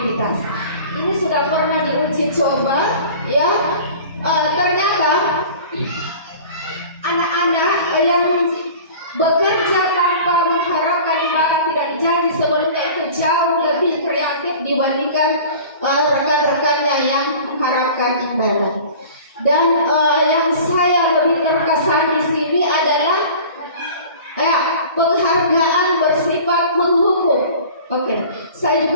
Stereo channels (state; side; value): inverted; both; correlation -0.42